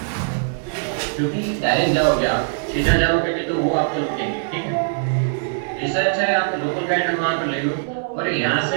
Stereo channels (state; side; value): silent; left; digital silence